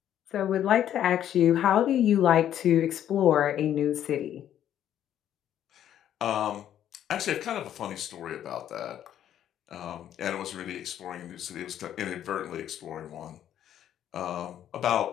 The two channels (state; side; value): quieter; right; 10.7 dB